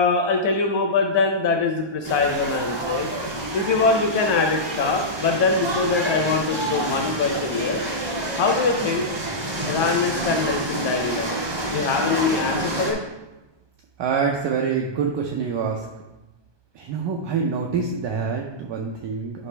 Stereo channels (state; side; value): late; left; 1.2 ms